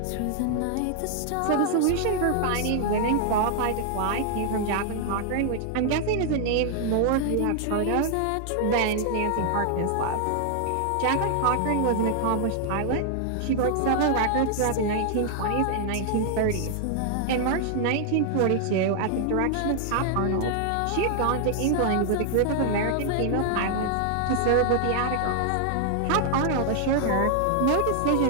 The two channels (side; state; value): both; different; correlation 0.00